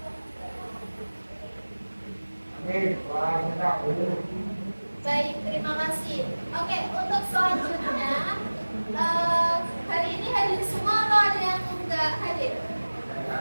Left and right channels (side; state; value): both; inverted; correlation -1.00